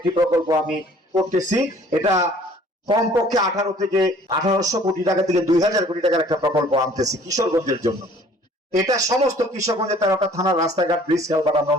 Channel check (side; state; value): both; normal; correlation 0.54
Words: প্রকল্প আমি করতেছি। এটা কমপক্ষে 18 থেকে 1800 কোটি টাকা থেকে 2000 কোটি টাকার একটা প্রকল্প আনতেছি কিশোরগঞ্জের জন্য। এটা সমস্ত কিশোরগঞ্জের 13টা থানার রাস্তাঘাট, ব্রিজ, কালভার্ট আমরা